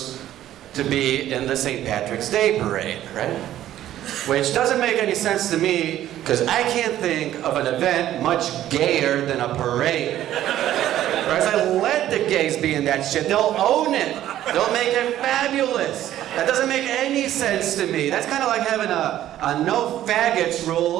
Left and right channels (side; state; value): left; quieter; 12.7 dB